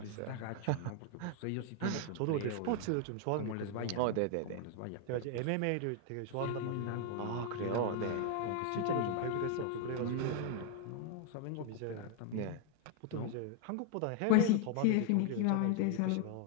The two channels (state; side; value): different; both; correlation 0.00